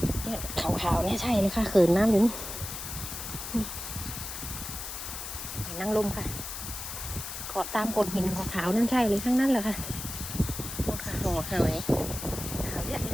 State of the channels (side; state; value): left; noise; hiss, 7 dB below the sound